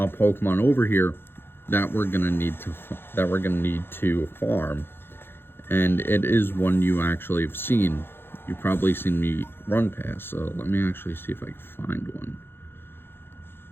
over here that we're gonna need to farm, and it is one you actually have seen. You've probably seen me run past. So let me actually see if I can find one.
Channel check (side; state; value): right; late; 0.11 ms